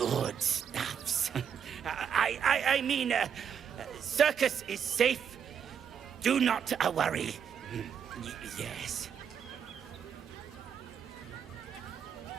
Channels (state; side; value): quieter; left; 7.8 dB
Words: stuffs. I mean, circus is safe. Do not worry. Yes.